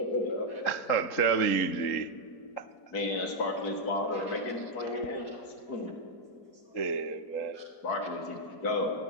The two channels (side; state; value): right; late; 3.8 ms